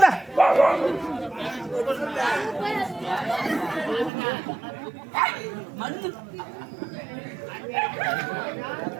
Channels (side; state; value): left; drops out; at 4.1 s